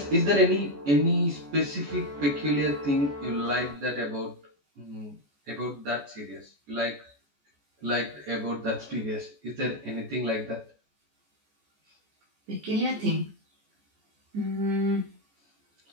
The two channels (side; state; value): left; late; 14 ms